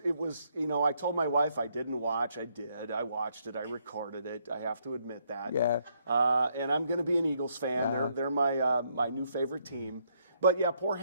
I told my wife I didn't watch. I did. I watched it. I recorded it. I have to admit that. Yeah. And I'm going to be an Eagles fan. Yeah. They're my new favorite team. But yeah, poor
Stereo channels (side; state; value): both; inverted; correlation -0.72